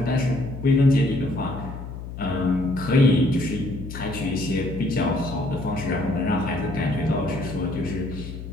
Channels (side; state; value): left; noise; hum, 10 dB below the sound